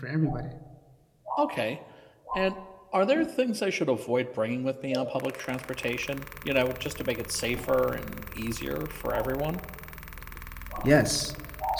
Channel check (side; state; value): both; identical; correlation 1.00